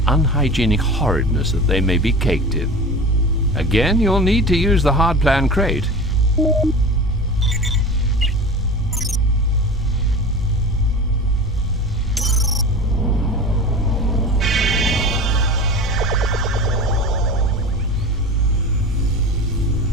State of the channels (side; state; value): both; normal; correlation 0.34